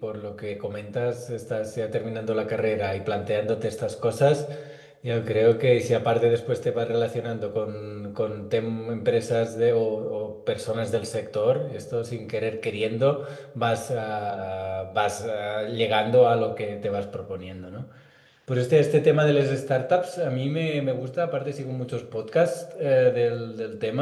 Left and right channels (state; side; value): identical; both; correlation 1.00